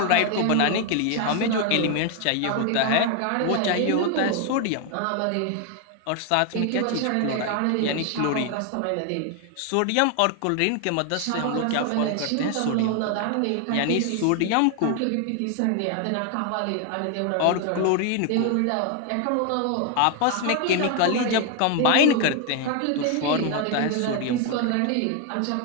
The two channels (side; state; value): both; different; correlation 0.01